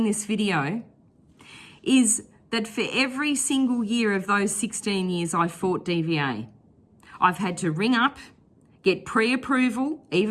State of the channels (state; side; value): identical; both; correlation 1.00